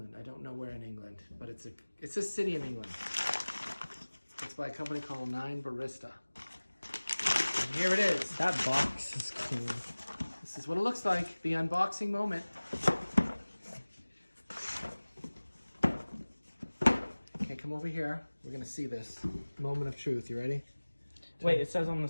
don't know where in England, but it's a city in England. It's by a company called My9Barista. And here it is. That box is cool. This is what it looks like, the unboxing moment. Okay, come over here. We're gonna see this moment of truth. You ready? Wait, it says on the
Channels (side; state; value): both; inverted; correlation -1.00